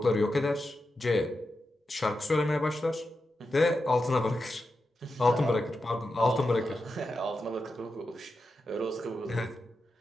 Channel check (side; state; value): both; normal; correlation 0.89